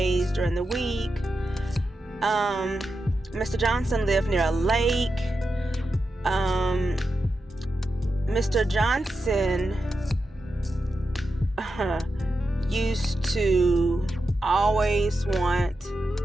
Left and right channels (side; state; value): both; normal; correlation 0.89